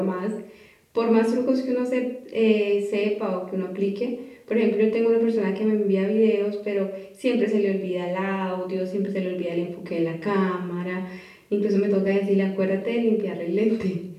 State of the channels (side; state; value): both; identical; correlation 1.00